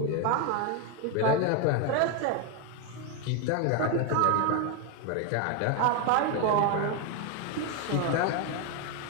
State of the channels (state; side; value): different; both; correlation 0.01